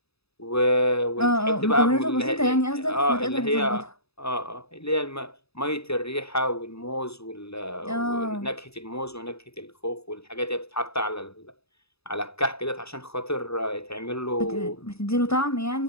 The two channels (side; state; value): right; late; 0.78 ms